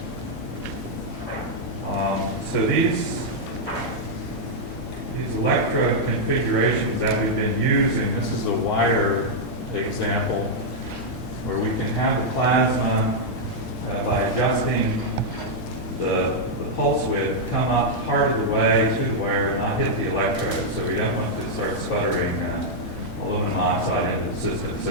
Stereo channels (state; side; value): normal; both; correlation -0.05